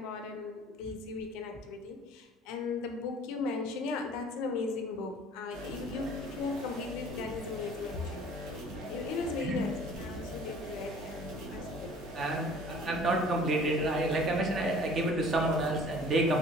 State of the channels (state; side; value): normal; both; correlation 0.50